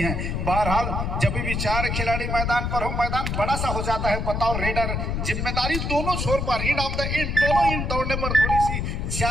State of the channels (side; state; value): left; noise; rumble, 2 dB below the sound